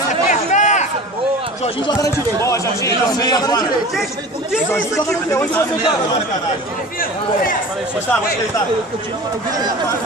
Jorginho joga na direita. Boa, Jorginho joga na direita. O que é isso aqui? Onde você joga? Gostava, vou aceitar.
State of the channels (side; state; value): both; normal; correlation 0.37